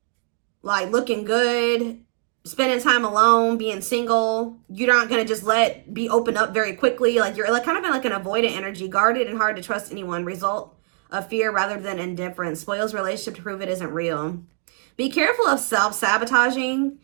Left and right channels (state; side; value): quieter; left; 38.2 dB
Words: like looking good, spending time alone, being single. You're not going to just be open up very quickly. Like you're like kind of in like an avoidant energy, guarded and hard to trust anyone. Result of fear rather than indifference. Spoils relationship to prove it isn't real. Be careful of self-sabotaging,